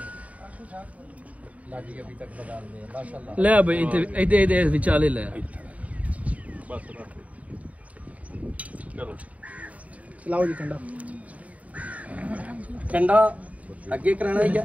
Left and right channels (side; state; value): left; late; 0.069 ms